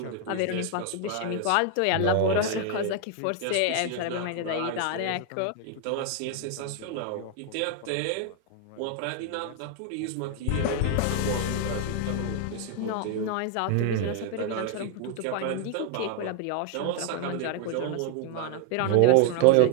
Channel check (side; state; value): both; different; correlation 0.00